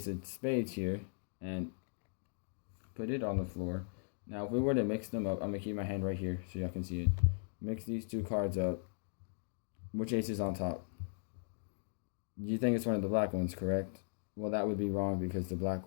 of spades here and put it on the floor, now if we were to mix them up, I'm gonna keep my hand right here so y'all can see it. Mix these 2 cards up. Which ace is on top? You think it's one of the black ones, correct? Well, that would be wrong because the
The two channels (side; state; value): right; silent; digital silence